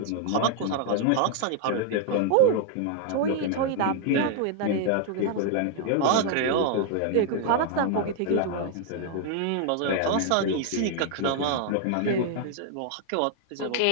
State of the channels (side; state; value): both; different; correlation 0.00